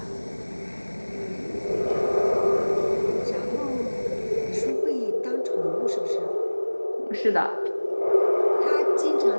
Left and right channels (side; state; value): both; inverted; correlation -1.00